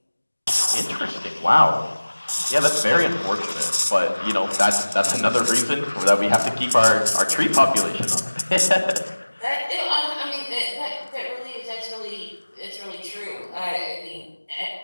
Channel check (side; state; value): both; inverted; correlation -1.00